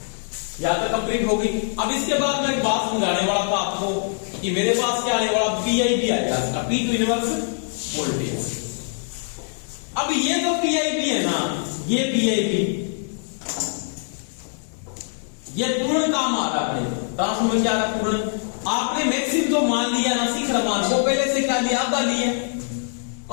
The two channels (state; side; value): silent; right; digital silence